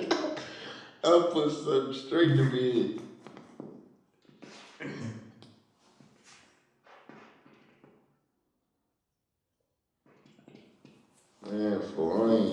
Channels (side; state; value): both; identical; correlation 1.00